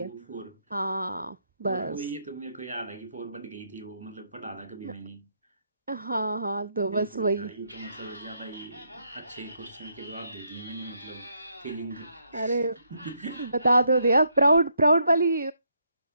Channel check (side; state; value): both; inverted; correlation -0.75